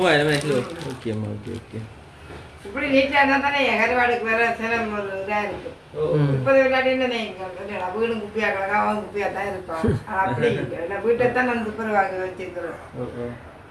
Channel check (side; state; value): both; identical; correlation 1.00